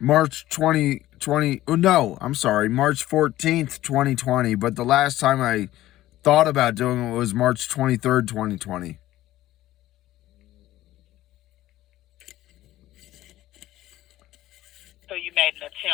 2020. Oh, no, I'm sorry. March 14th, 2020. But the last time I thought about doing it was March 23rd, 2020. So you made an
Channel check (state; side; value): quieter; right; 15.1 dB